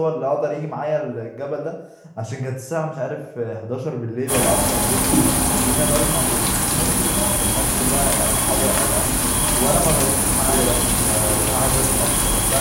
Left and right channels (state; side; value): identical; both; correlation 1.00